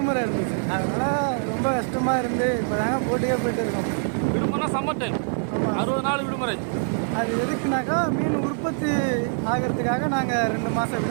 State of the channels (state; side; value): silent; left; 59 dB below the other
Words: இருந்துச்சு, அதனால் ரொம்ப கஷ்டமாக இருந்து இப்போ தாங்க போட்டுக்கே போயிட்டு இருக்கோம். விடுமுறை சம்மர் டைம், 60 நாள் விடுமுறை. அது எதுக்குனாக்கா மீன் உற்பத்தி ஆகிறதுக்காக நாங்கள் 2 மாதம்